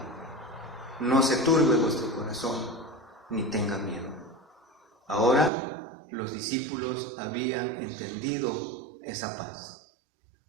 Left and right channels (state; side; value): drops out; left; at 5.5 s